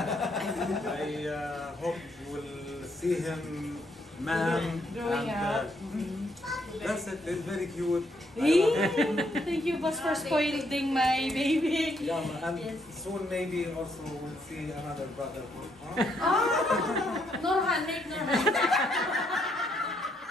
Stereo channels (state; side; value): normal; both; correlation 0.73